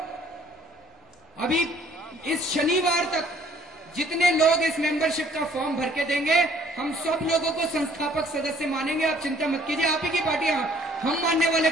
अभी इस शनिवार तक जितने लोग इस मेंबरशिप का फॉर्म भर के देंगे, हम सब लोगों को संस्थापक सदस्य मानेंगे। आप चिंता मत कीजिए, आप ही की पार्टी। हम मानने वाले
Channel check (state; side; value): normal; both; correlation 0.59